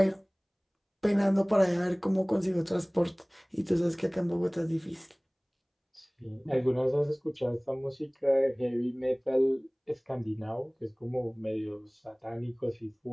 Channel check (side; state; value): both; identical; correlation 1.00